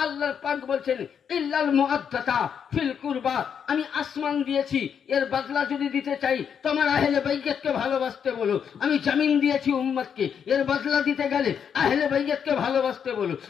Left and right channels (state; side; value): quieter; right; 7.6 dB